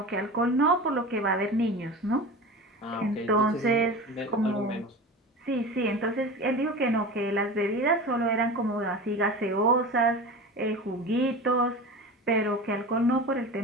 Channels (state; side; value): normal; both; correlation 0.31